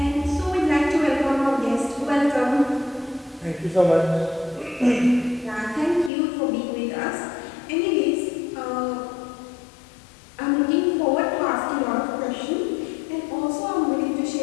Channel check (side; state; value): right; drops out; at 6.1 s